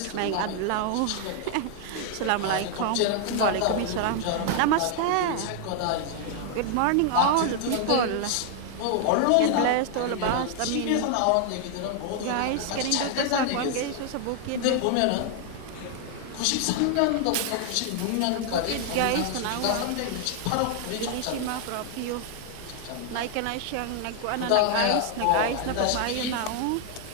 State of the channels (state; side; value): different; both; correlation 0.00